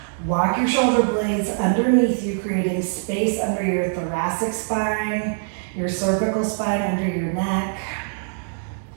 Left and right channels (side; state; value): left; silent; digital silence